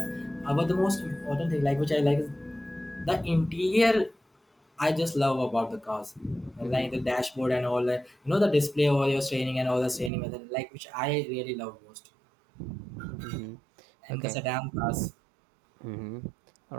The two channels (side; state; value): left; drops out; at 10.1 s